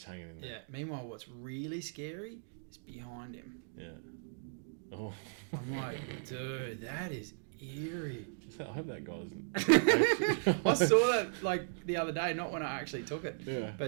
hanging in. Yeah. Meanwhile, what's really scary is behind him. Yeah. Oh, I'm like, dude, that is eerie. I hope that guy doesn't. I saw that like the other day, not when I actually took it. Yeah.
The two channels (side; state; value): left; silent; digital silence